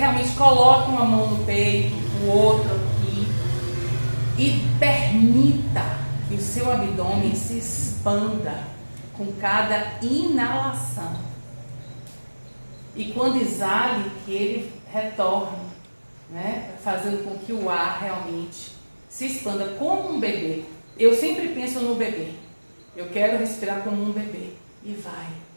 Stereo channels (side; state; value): both; inverted; correlation -1.00